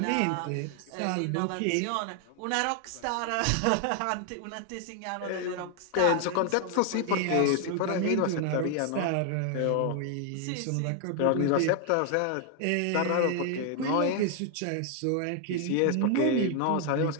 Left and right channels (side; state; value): both; different; correlation 0.00